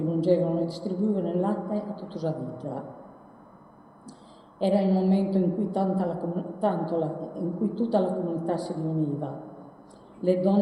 mungevano e distribuivano il latte a tutta la vita. Era il momento in cui tutta la comunità si riuniva. Le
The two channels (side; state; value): both; identical; correlation 1.00